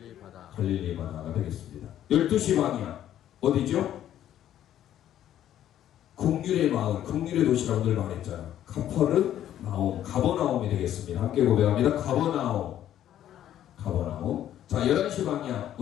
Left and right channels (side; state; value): right; quieter; 11.5 dB